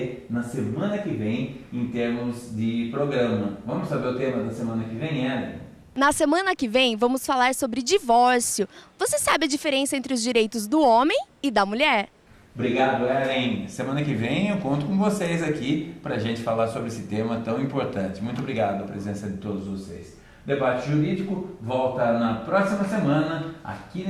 na semana que vem em termos de programa. Vamos saber o tema da semana que vem, Ellen? Na semana que vem vamos falar sobre divórcio. Você sabe a diferença entre os direitos do homem e da mulher? Obrigado, Ellen. Semana que vem eu conto com vocês aqui para a gente falar sobre esse tema tão importante. Muito obrigado pela presença de todos vocês. Debate Jurídico volta na próxima semana aqui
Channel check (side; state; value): both; identical; correlation 1.00